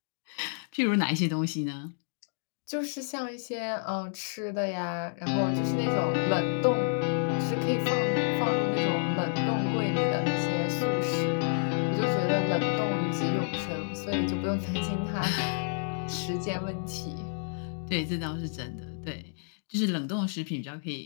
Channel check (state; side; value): silent; right; digital silence